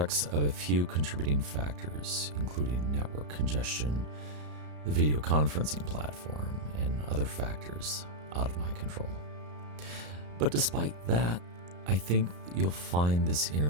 of a few contributing factors, including network congestion, the video conferencing platform, and other factors out of my control. But despite that, I think you'll find this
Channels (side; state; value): left; late; 34 ms